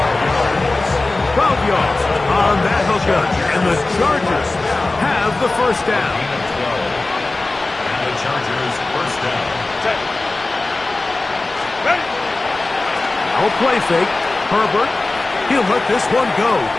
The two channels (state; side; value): quieter; right; 3.1 dB